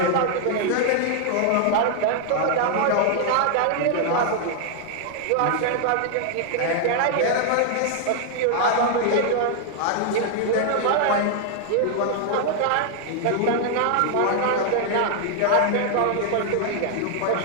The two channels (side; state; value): both; different; correlation 0.00